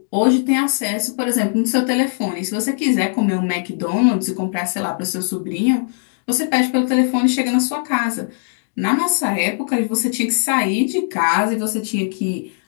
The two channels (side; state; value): right; silent; digital silence